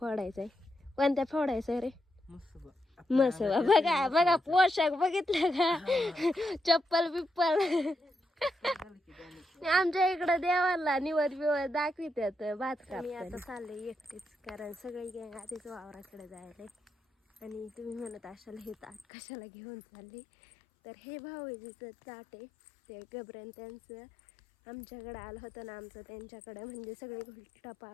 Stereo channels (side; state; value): right; drops out; at 19.1 s